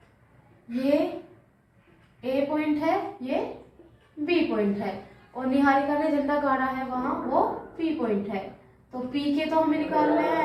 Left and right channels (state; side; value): identical; both; correlation 1.00